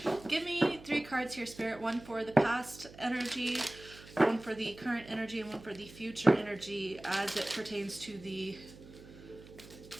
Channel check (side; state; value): right; noise; hum, 19 dB below the sound